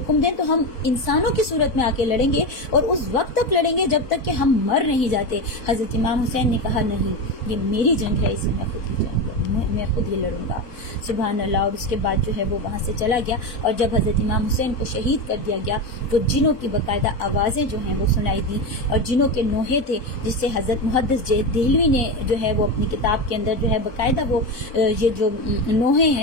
دیں تو ہم انسانوں کی صورت میں آ کے لڑیں گے اور اس وقت تک لڑیں گے جب تک کہ ہم مر نہیں جاتے. حضرت امام حسین نے کہا نہیں، یہ میری جنگ ہے، اسے میں خود ہی لڑوں گا. سبحان اللہ. اور اس کے بعد جو ہے وہ وہاں سے چلا گیا اور جب حضرت امام حسین کو شہید کر دیا گیا تو جنوں کی باقاعدہ آوازیں جو ہیں وہ سنائی دی اور جنوں کے نوحے تھے جس سے حضرت محدث دہلوی نے جو ہے وہ اپنی کتاب کے اندر جو ہے باقاعدہ وہ یہ جو نوحے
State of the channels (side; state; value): right; late; 4.0 ms